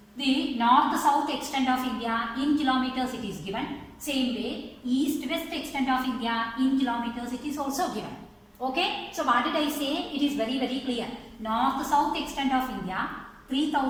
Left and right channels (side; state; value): both; identical; correlation 1.00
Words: The north-south extent of India in kilometers it is given. Same way, east-west extent of India in kilometers it is also given. Okay, so what did I say? It is very clear. North-south extent of India